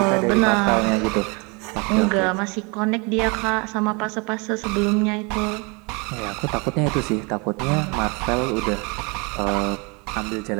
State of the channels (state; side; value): quieter; left; 30.2 dB